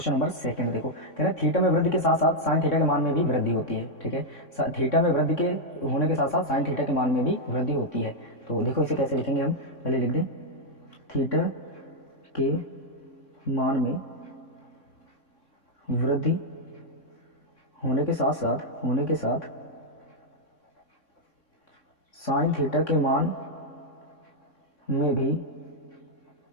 नंबर सेकंड देखो, कह रहे हैं थीटा में वृद्धि के साथ साथ साइन थीटा के मान में भी वृद्धि होती है। ठीक है, थीटा में वृद्धि के होने के साथ साथ साइन थीटा के मान में भी वृद्धि होती है। तो देखो इसे कैसे लिखेंगे हम, पहले लिख दें थीटा के मान में वृद्धि होने के साथ साइन थीटा के मान में भी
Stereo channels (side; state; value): right; late; 3.6 ms